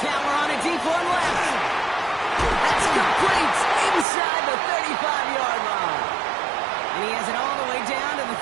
on a deep one left. That's complete inside the 35-yard line. And he has it all the way down to the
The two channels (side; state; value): left; drops out; at 4.0 s